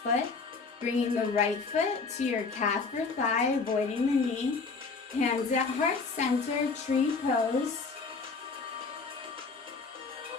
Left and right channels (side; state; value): right; quieter; 4.5 dB